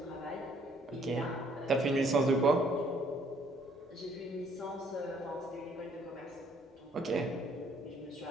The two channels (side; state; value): both; normal; correlation 0.64